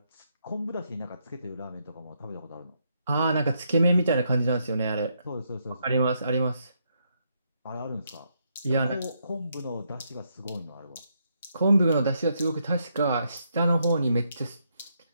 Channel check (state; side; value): inverted; both; correlation -0.78